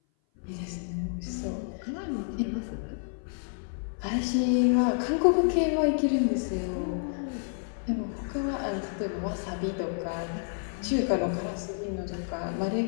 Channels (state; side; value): silent; right; 56 dB below the other